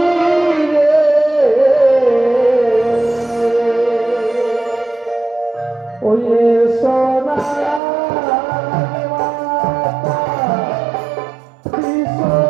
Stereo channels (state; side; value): drops out; left; at 7.8 s